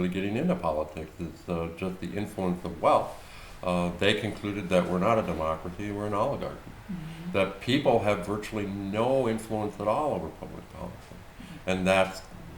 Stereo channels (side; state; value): both; identical; correlation 1.00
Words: getting into politics, is just the influence of wealth. They concluded that we're not a democracy, we're an oligarchy. Mm-hmm. That people have virtually no influence at all over public policy. And that's